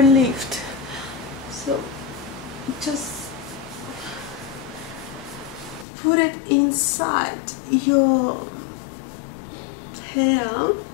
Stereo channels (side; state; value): right; drops out; at 5.9 s